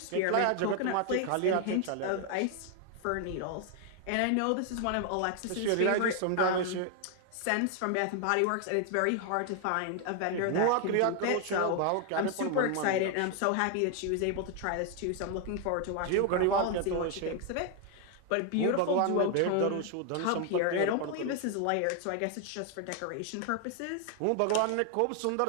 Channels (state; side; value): different; both; correlation 0.00